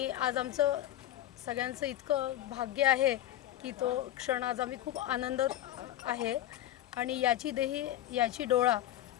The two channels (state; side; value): quieter; right; 13.1 dB